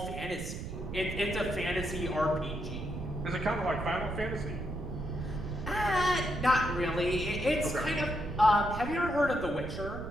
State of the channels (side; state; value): right; noise; rumble, 7 dB below the sound